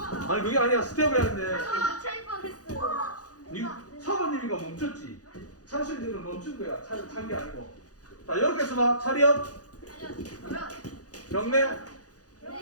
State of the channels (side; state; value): right; late; 0.67 ms